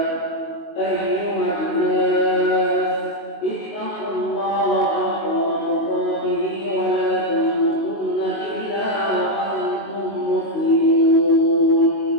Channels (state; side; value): late; right; 19 ms